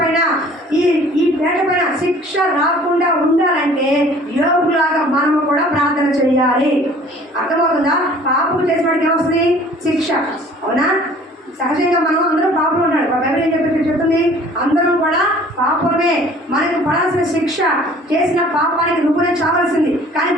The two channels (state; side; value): normal; both; correlation 0.51